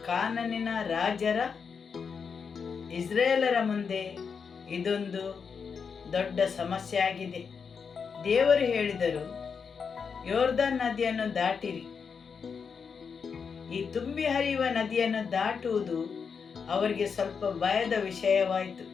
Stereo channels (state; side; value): quieter; right; 6.0 dB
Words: ಕಾನಾನಿನ ರಾಜರ ಇಸ್ರಾಯೇಲರ ಮುಂದೆ ಇದೊಂದು ದೊಡ್ಡ ಸಮಸ್ಯೆ ಆಗಿದೆ. ದೇವರು ಹೇಳಿದರು, ಯೋರ್ದನ್ ನದಿಯನ್ನು ದಾಟಿರಿ. ಈ ತುಂಬಿ ಹರಿಯುವ ನದಿಯನ್ನು ದಾಟುವುದು ಅವರಿಗೆ ಸ್ವಲ್ಪ ಭಯದ ವಿಷಯವಾಯಿತು.